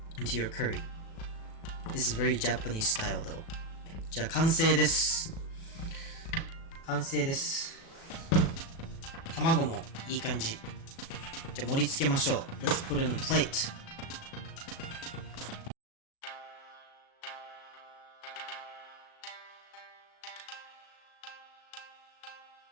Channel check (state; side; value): late; right; 37 ms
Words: into your curry. This is very Japanese style though. じゃあ完成です。完成です。卵もいい感じ。じゃあ盛り付けましょう。Let's put it on a plate.